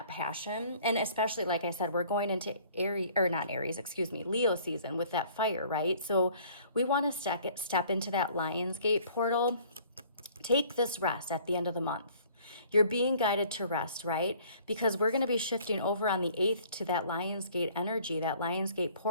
passion. And especially, like I said, we're going into Leo season with that fire, right? So we want to step into that Lionsgate portal. Take this rest at the end of the month. You're being guided to rest, right? Because we're going to be shifting over on the 8th to that Lionsgate energy, that Lionsgate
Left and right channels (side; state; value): both; inverted; correlation -0.55